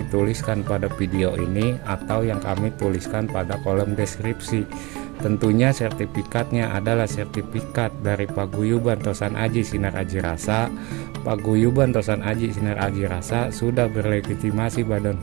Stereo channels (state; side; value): quieter; left; 24.9 dB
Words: tuliskan pada video ini atau yang kami tuliskan pada kolom deskripsi. Tentunya sertifikatnya adalah sertifikat dari Paguyuban Tosan Aji Sinar Aji Rasa. Paguyuban Tosan Aji Sinar Aji Rasa sudah berlegitimasi badan